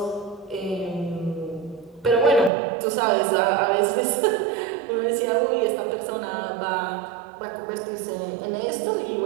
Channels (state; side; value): drops out; left; at 2.5 s